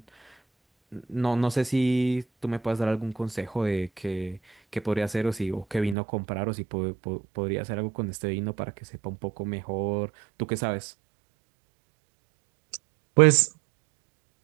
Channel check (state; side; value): drops out; left; at 6.0 s